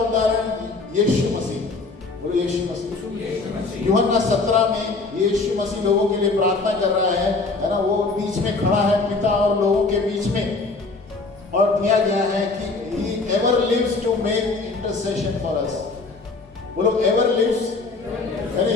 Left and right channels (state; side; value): quieter; right; 3.8 dB